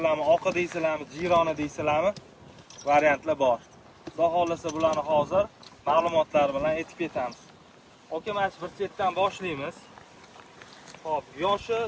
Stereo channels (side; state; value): both; identical; correlation 1.00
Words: oqi deysizlarmi, jironi deysizlarmi? Variantlar bor. Xudo xolasa bularni hozir ma'lumotlar bilan aytib ketamiz. Oka, mana bir chetdan boshlaymiz. Xo'p, yoshi,